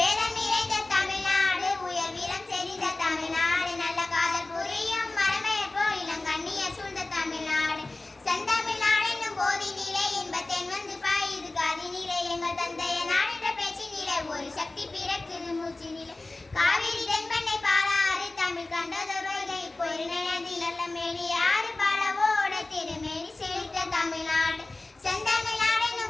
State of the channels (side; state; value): right; quieter; 3.0 dB